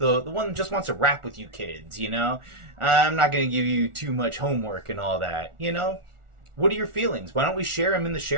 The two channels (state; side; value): late; left; 1.4 ms